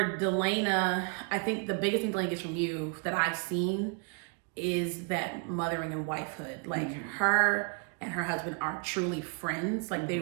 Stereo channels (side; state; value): left; quieter; 37.4 dB